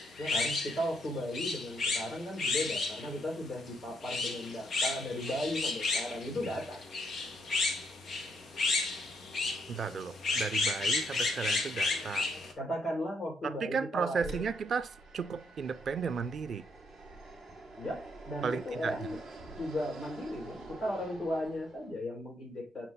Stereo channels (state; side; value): normal; both; correlation 0.73